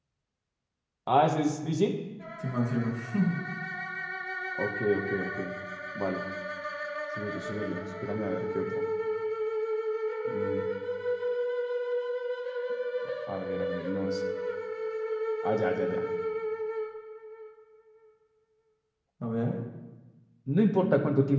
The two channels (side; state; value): both; identical; correlation 1.00